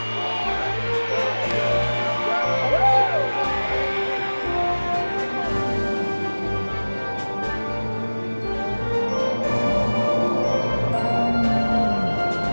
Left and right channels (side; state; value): both; inverted; correlation -1.00